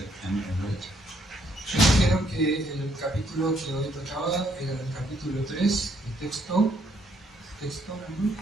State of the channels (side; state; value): both; normal; correlation 0.70